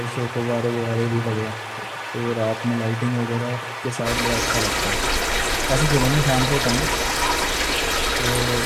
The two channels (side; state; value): both; identical; correlation 1.00